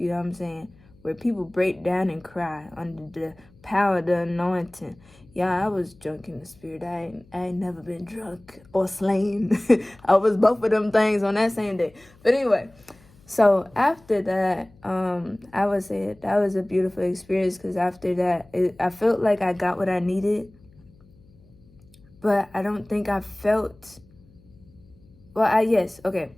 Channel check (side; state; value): left; noise; hum, 28 dB below the sound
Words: know what I'm saying? Where people break down and cry under the power of the anointing. Yeah, I was drunk in the spirit. I ain't never been drunk or slain. I was both of them things on that same day. But anyway, so after that, I would say that was a beautiful experience, because after that, I felt like I got what I needed. But I don't think I felt, yes, okay.